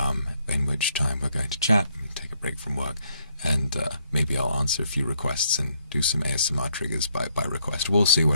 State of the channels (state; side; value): inverted; both; correlation -0.72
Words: in which time we're going to chat, take a break from work, and maybe I'll answer a few requests and do some ASMR triggers by request. We'll see